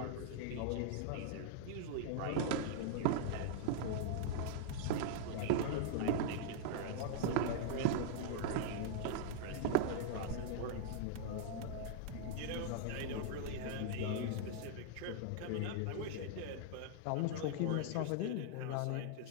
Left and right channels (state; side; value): different; both; correlation -0.01